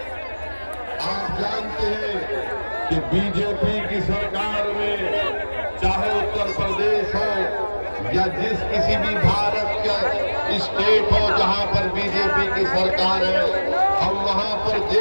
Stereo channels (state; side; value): inverted; both; correlation -1.00